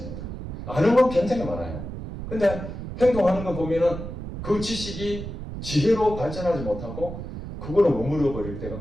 아는 건 굉장히 많아요. 근데 행동하는 거 보면은 그 지식이 지혜로 발전하지 못하고 그걸로 머물러 버릴 때가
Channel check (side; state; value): right; noise; rumble, 8 dB below the sound